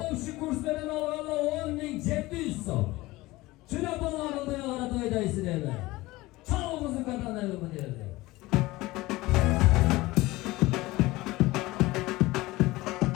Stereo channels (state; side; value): quieter; right; 19.7 dB